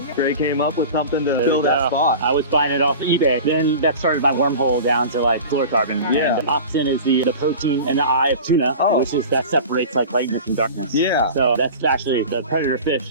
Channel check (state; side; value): inverted; both; correlation -0.35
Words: Greg came up with something to fill that spot. I was buying it off eBay. Then that started my wormhole down to like fluorocarbon. Yeah. And Opsin is the protein in the eye of tuna, which is that separates like lightness and darkness. Yeah. So that's actually the predator fish